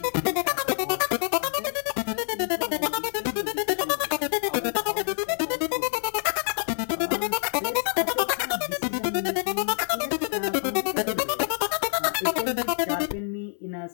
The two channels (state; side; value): silent; right; 57 dB below the other